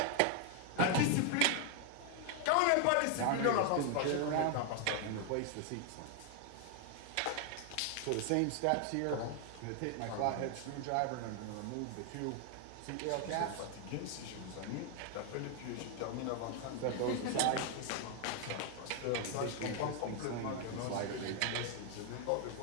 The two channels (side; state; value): both; different; correlation 0.00